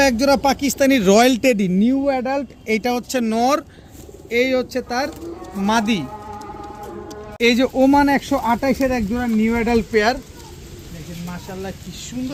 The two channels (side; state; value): both; identical; correlation 1.00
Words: এক জোড়া Pakistani royal teddy new adult. এইটা হচ্ছে নর, এই হচ্ছে তার মাদি। এই যে ওমান 128-এর এক জোড়া নিউ অ্যাডাল্ট পেয়ার, দেখেন মাশাল্লাহ কি